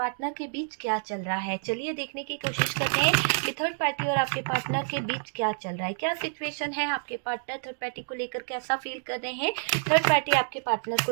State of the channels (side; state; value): left; silent; digital silence